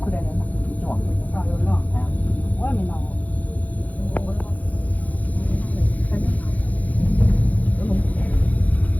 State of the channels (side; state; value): right; late; 0.075 ms